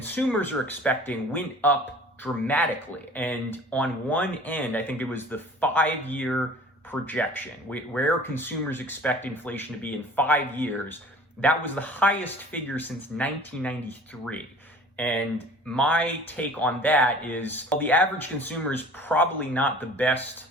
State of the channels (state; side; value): normal; both; correlation 0.46